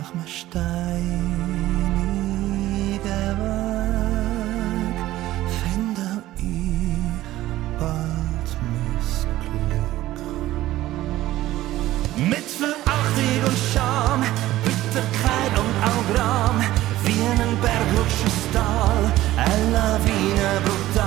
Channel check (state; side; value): quieter; left; 15.5 dB